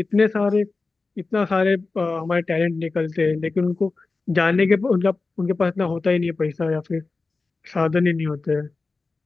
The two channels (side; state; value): right; quieter; 3.8 dB